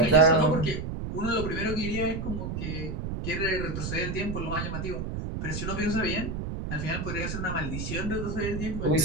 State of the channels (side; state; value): right; noise; rumble, 4 dB below the sound